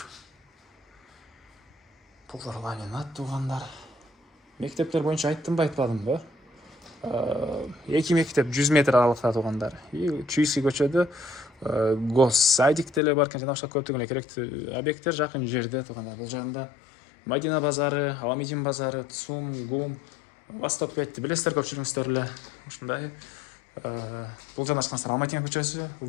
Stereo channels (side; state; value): right; drops out; at 13.0 s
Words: Полдор ламинат туғандар. Мектептер боюнча айттымбы, айтпадымбы? 2 мектеп 100 метр аралыкта туғандар. Чуйский көчөдө госсадик деле бар экен, жана башка көптөгөн эле керектүү объекттер жакын жерде туғандар. Бул жагында Мадина базары, Аламедин базары, ЦУМ, ГУМ, Восток 5-ти билесиздер көпчүлүгүңүздөр эле. Ушундай Бұл жанашқансыздар Алматина көшесі,